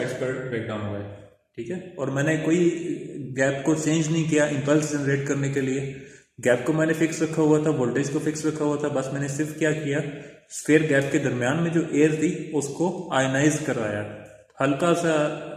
पर ब्रेकडाउन हो गए, ठीक है। और मैंने कोई गैप को चेंज नहीं किया इम्पल्स जनरेट करने के लिए, गैप को मैंने फिक्स रखा हुआ था, वोल्टेज को फिक्स रखा हुआ था, बस मैंने सिर्फ क्या किया, स्फीयर गैप के दरमियान में जो एयर थी उसको आयनाइज करवाया, हल्का सा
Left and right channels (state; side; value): identical; both; correlation 1.00